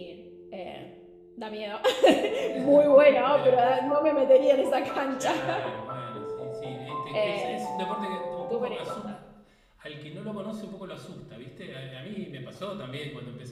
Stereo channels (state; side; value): identical; both; correlation 1.00